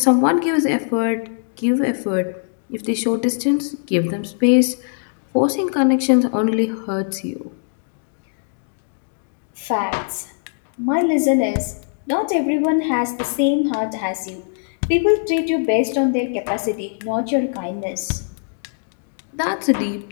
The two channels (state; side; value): silent; right; digital silence